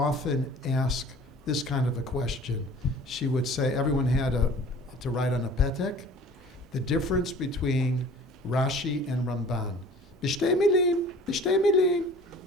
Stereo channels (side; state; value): both; normal; correlation 0.46